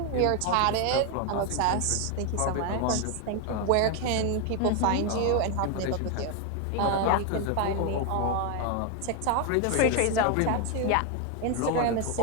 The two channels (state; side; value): different; both; correlation 0.01